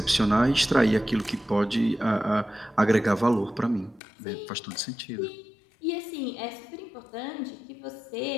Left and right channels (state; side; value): drops out; right; at 4.0 s